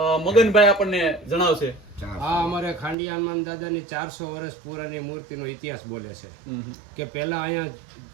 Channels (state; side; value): drops out; left; at 3.0 s